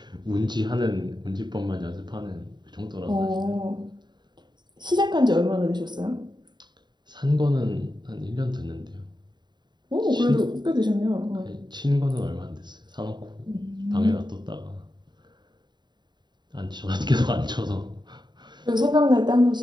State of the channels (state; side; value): late; left; 0.21 ms